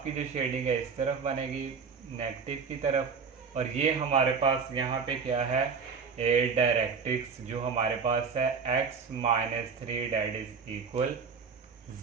की जो शेडिंग है इस तरफ बनेगी नेगेटिव की तरफ, और ये हमारे पास यहाँ पे क्या है डायरेक्ट्रिक्स जो हमारे पास है x-3 डेट इज इक्वल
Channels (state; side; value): quieter; left; 5.6 dB